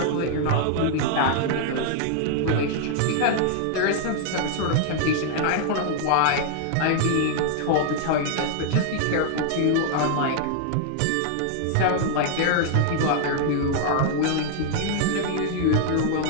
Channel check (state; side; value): different; both; correlation 0.00